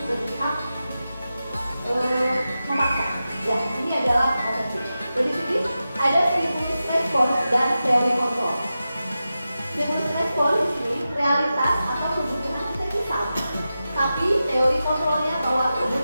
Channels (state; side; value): inverted; both; correlation -0.92